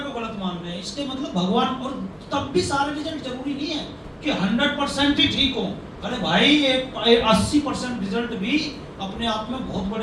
को गलत मान रहे हैं। इसके मतलब भगवान, और तब भी सारे रिजल्ट जरूरी नहीं है कि 100% ही ठीक हो। अरे भाई 80% रिजल्ट भी अपने आप में बहुत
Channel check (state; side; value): identical; both; correlation 1.00